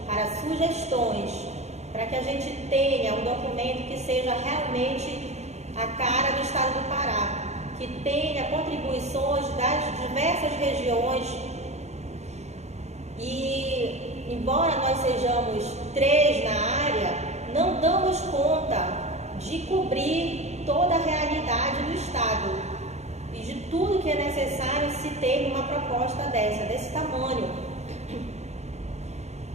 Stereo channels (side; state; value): left; late; 0.32 ms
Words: para sugestões, para que a gente tenha um documento que seja realmente a cara do estado do Pará, que tenha contribuições das diversas regiões. E, embora nós sejamos 3 na área, não damos conta de cobrir toda a realidade do estado e de tudo que é necessário se ter uma proposta desse tamanho.